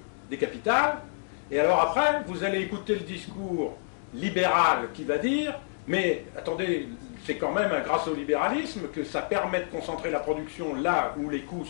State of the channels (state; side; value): silent; right; digital silence